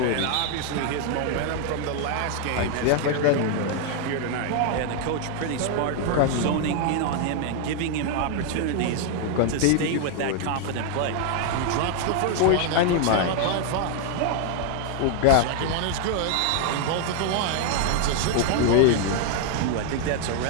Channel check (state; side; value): different; both; correlation 0.00